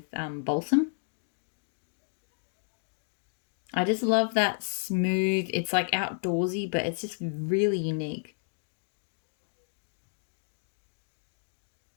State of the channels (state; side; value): silent; right; digital silence